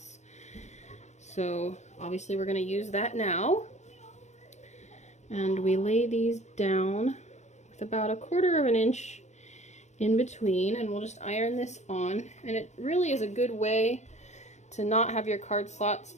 So obviously we're going to use that now, and we lay these down with about 1/4 inch in between, and we'll just iron this on. And it really is a good way to not have your card slots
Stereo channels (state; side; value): late; right; 0.33 ms